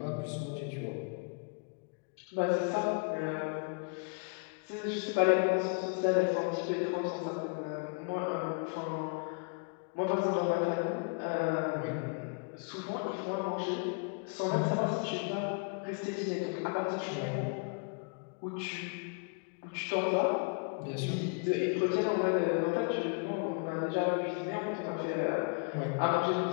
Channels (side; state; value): right; quieter; 36.0 dB